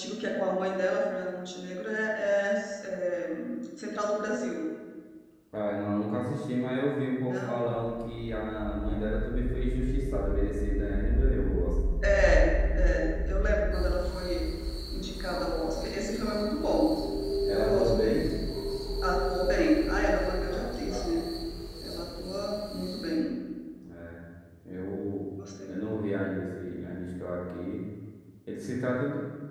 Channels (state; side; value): identical; both; correlation 1.00